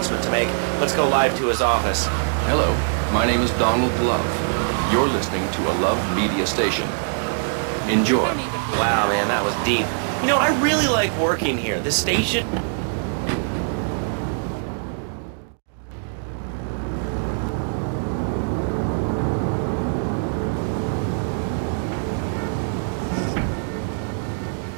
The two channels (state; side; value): silent; left; digital silence